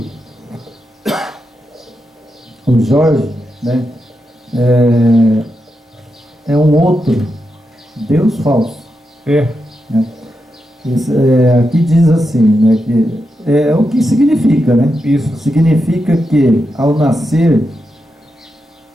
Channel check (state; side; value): normal; both; correlation 0.86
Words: o Jorge, né, é um outro Deus falso. Né? Aqui diz assim, né, que é o que significa, né? Isso. Significa que, ao nascer,